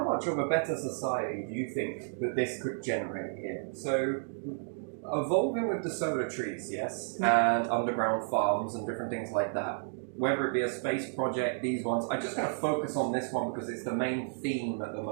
much of a better society do you think that this could generate here? So evolving with the solar trees, yes, and underground farms and different things like that. Whether it be a space project, these ones, I'm just going to focus on this one because it's the main theme at the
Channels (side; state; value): left; silent; digital silence